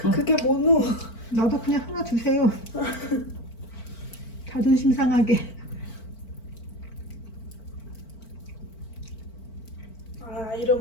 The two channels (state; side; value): late; right; 4.4 ms